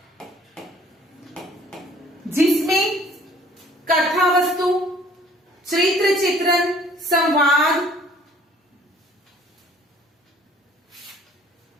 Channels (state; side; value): normal; both; correlation 0.55